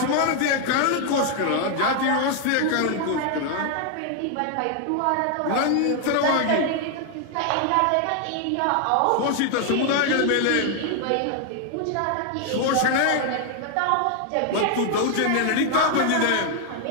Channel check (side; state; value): both; different; correlation 0.00